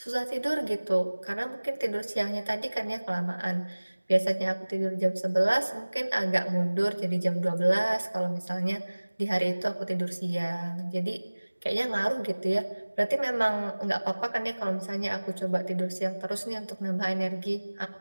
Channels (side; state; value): both; inverted; correlation -1.00